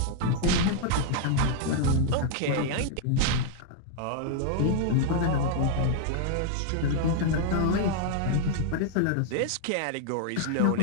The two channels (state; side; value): different; both; correlation 0.00